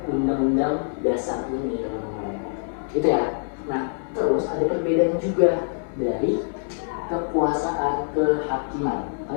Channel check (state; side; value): silent; right; 62 dB below the other